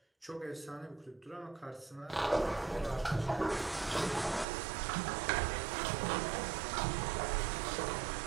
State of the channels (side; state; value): left; drops out; at 4.5 s